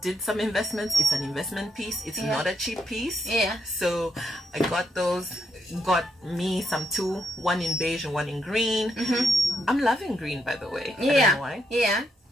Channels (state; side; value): normal; both; correlation 0.78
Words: did some investments. It's an investment piece. It's not a cheap piece. Yeah. So I got those. Got me some two, one in beige and one in green. I'm loving green, by the way. I don't know why. Yeah.